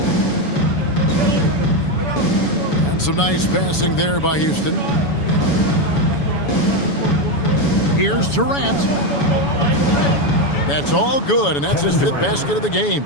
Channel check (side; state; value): right; late; 7.1 ms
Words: And some nice passing there by Houston. Here's Durant. That's all good, and that's his 5th basket of the game.